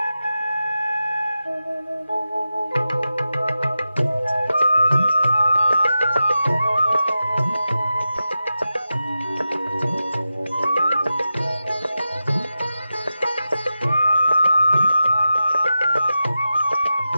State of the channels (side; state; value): both; inverted; correlation -0.91